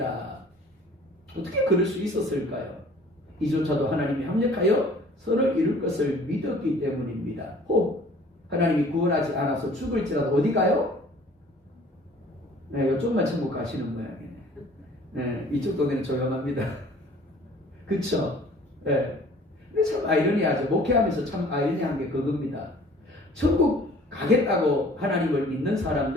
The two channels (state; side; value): normal; both; correlation 0.51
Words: 어떻게 그럴 수 있었을까요? 이조차도 하나님이 합력하여 선을 이룰 것을 믿었기 때문입니다. 혹 하나님이 구원하지 않아서 죽을지라도 어디 가요? 네, 이쪽만 천국 가시는 모양이네. 네, 이쪽 동네는 조용합니다. 그쵸? 네. 근데 참 아이러니하죠. 목회하면서 참 아이러니한 게 그겁니다. 천국 가겠다고 하나님을 믿는